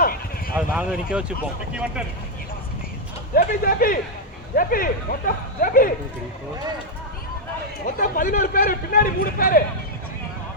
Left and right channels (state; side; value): normal; both; correlation -0.01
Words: அது நாங்க நிக்க வச்சுப்போம். ஜேபி மொத்தம் ஜேபி மொத்தம் 11 பேர், பின்னாடி 3 பேர்.